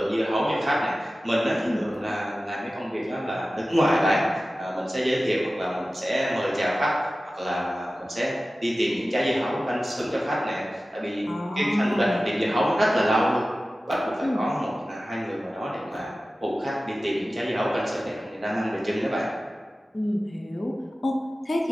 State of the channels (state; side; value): normal; both; correlation 0.96